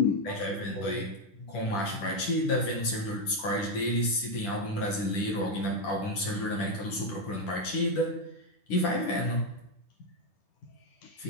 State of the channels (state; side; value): late; right; 10 ms